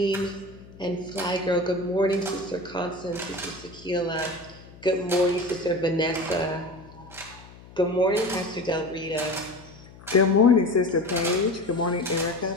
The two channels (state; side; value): noise; left; hum, 20 dB below the sound